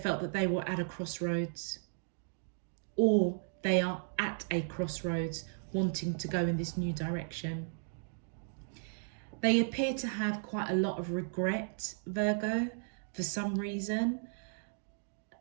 that they were at a crossroads, or they are at a crossroads wanting to go in this new direction. They appear to have quite a lot of regret, Virgo, for some reason.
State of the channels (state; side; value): silent; left; digital silence